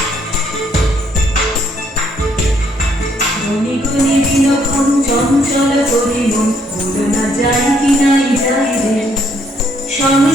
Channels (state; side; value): normal; both; correlation 0.69